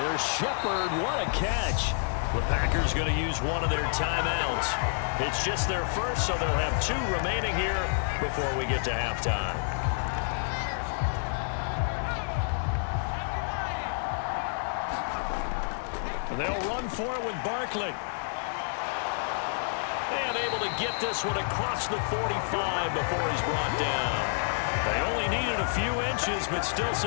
Shepard. What a catch. The Packers going to use one of their timeouts. It's just their first, so they'll have 2 remaining here before we get to halftime. They'll run for it with Barkley. And able to get this one across the 45 before he's brought down. They only needed a few inches, but still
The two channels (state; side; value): silent; right; digital silence